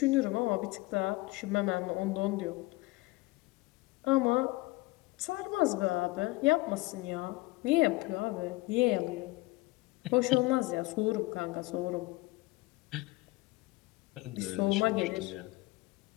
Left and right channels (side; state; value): right; quieter; 21.7 dB